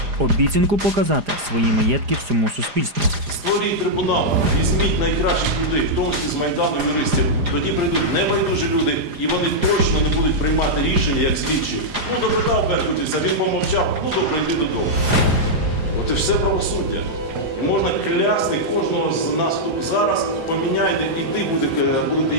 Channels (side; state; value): left; late; 4.9 ms